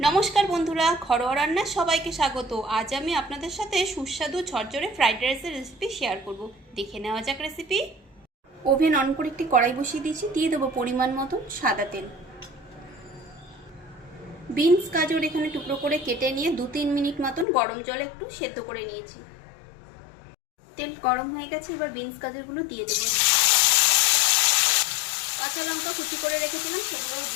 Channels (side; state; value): right; drops out; at 17.4 s